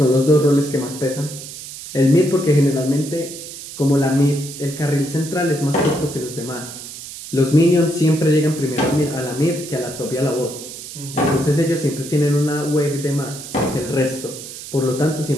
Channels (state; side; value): noise; right; hiss, 12 dB below the sound